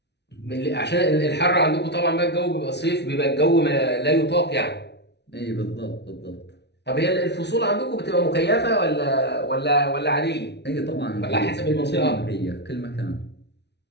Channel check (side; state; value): right; late; 0.50 ms